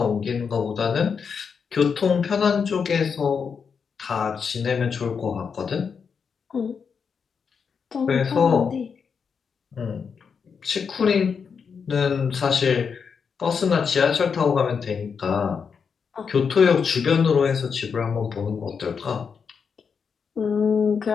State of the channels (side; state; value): right; quieter; 6.1 dB